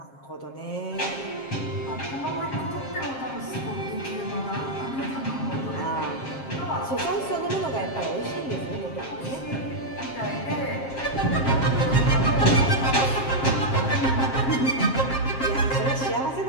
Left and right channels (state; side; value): late; right; 7.5 ms